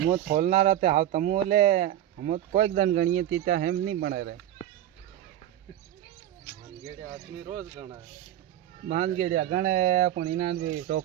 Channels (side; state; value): left; quieter; 12.3 dB